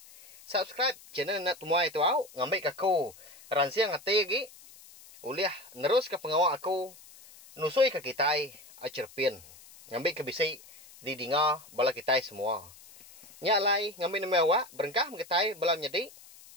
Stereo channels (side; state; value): left; noise; hiss, 21 dB below the sound